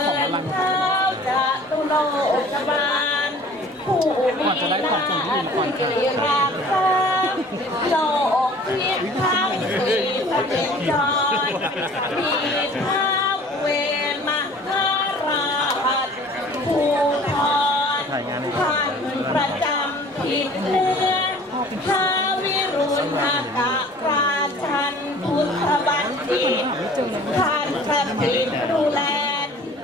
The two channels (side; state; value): both; normal; correlation 0.49